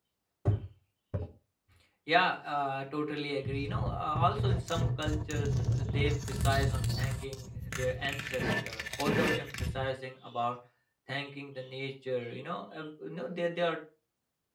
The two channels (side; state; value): both; identical; correlation 1.00